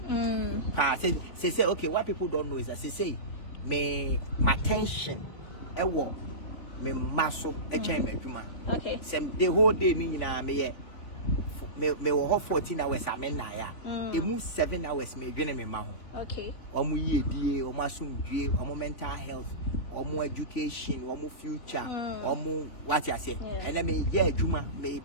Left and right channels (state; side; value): late; right; 3.5 ms